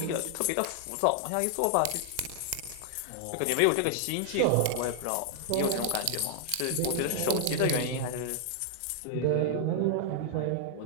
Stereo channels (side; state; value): both; different; correlation 0.00